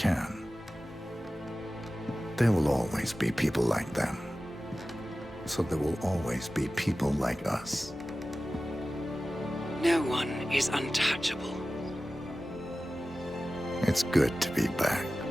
There will always be people like them. So there will always be people like us. No one is untouchable. It's good to be back.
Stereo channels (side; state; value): both; normal; correlation 0.95